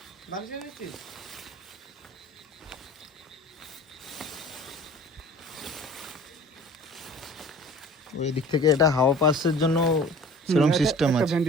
বালিশ এনেছিস? ওই দিক থেকে এটা হাওয়া পাসের জন্য সেরকম সিস্টেম আছে।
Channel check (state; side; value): normal; both; correlation 0.45